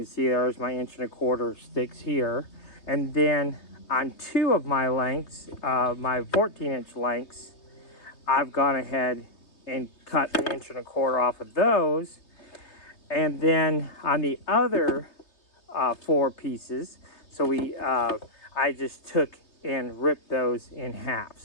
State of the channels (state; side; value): late; right; 3.2 ms